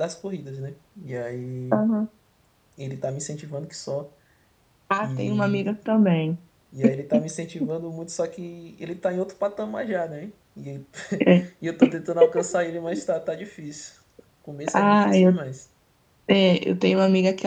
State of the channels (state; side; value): identical; both; correlation 1.00